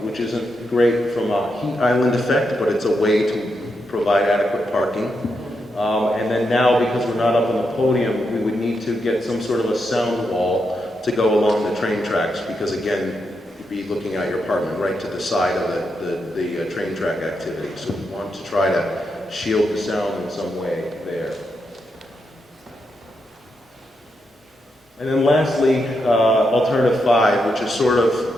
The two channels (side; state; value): both; normal; correlation 0.83